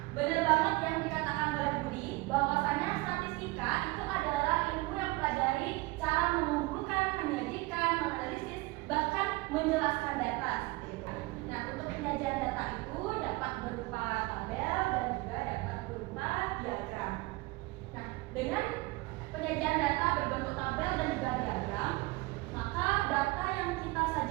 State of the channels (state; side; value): quieter; left; 22.6 dB